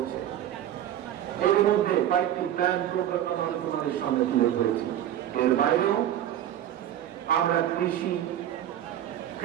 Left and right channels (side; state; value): left; quieter; 11.5 dB